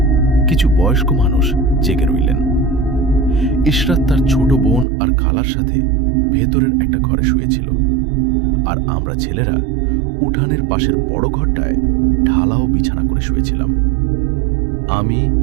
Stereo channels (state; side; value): drops out; left; at 4.9 s